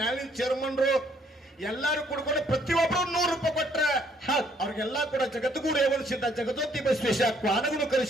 ಚೇರ್ಮನ್ರು ಎಲ್ಲರೂ ಕೂಡ್ಕೊಂಡು ಪ್ರತಿಯೊಬ್ಬರು 100 ರೂಪಾಯಿ ಕೊಟ್ರೆ. ಅವ್ರಿಗೆಲ್ಲ ಕೂಡ ಜಗದ್ಗುರು ರೇವಣ ಸಿದ್ಧ, ಜಗದೋತಿ ಬಸವೇಶ, ಕ್ವಾನಗುರು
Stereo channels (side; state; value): both; normal; correlation 0.66